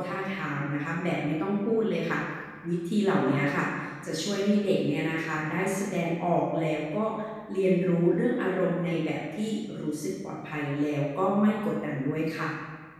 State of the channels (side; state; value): both; identical; correlation 1.00